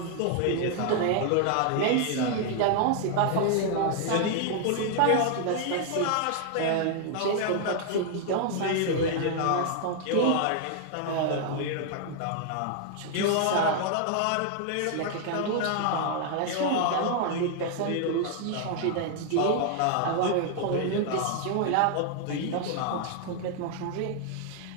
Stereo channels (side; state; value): both; different; correlation 0.00